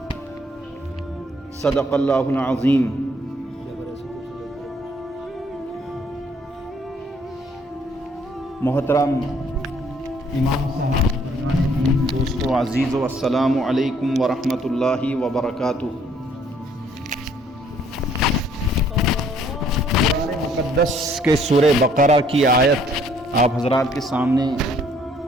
صدق اللہ العظیم. محترم امام صاحب، دوستو عزیزو، السلام علیکم ورحمۃ اللہ وبرکاتہ. قرآن مقدس کے سورہ بقرہ کی آیت آپ حضرات کے سامنے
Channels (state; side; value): normal; both; correlation 0.63